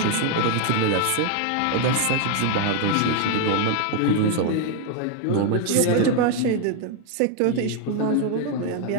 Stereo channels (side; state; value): both; different; correlation 0.00